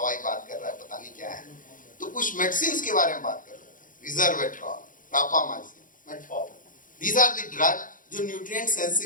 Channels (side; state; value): right; late; 0.39 ms